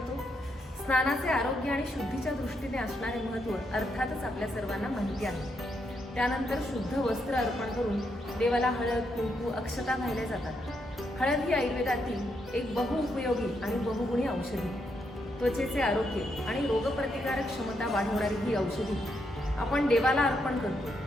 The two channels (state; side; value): normal; both; correlation 0.79